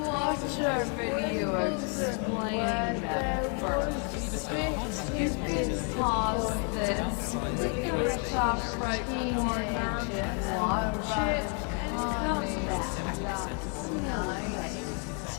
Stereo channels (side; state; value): right; quieter; 39.7 dB